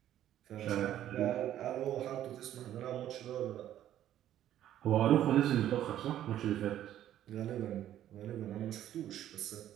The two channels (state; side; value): quieter; left; 11.9 dB